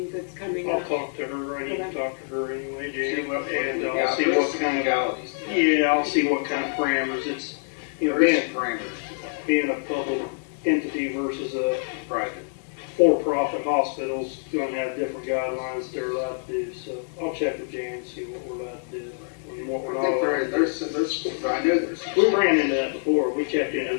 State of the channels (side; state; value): right; silent; digital silence